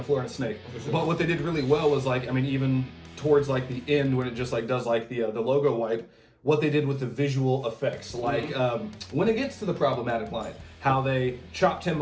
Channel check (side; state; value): both; identical; correlation 1.00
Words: floor, and a snake. For sure. But what they did really well was like, I mean, even towards like the end when it just like does like the logo wipe, what they did with the visual effects. Like when it gets to the problematic line, how they chopped him